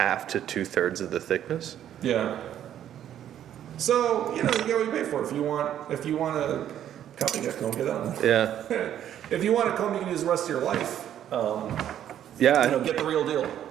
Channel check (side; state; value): left; quieter; 10.7 dB